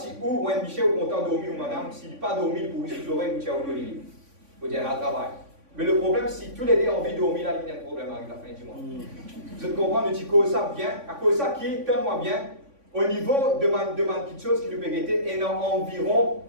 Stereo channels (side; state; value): left; late; 3.5 ms